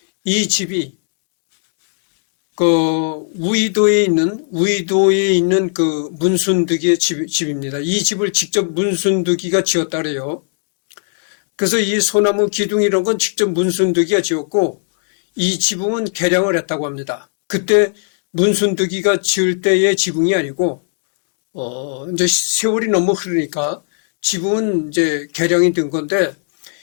이 집이 우이도에 있는 그 문순득이의 집입니다. 이 집을 직접 문순득이가 지었다 그래요. 그래서 이 소나무 기둥 이런 건 직접 문순득이가 지었고 이 지붕은 개량을 했다고 합니다. 그때 문순득이가 지을 때의 지붕이 아니고 이제 세월이 너무 흐르니까 지붕은 이제 개량이 된 건데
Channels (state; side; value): silent; right; digital silence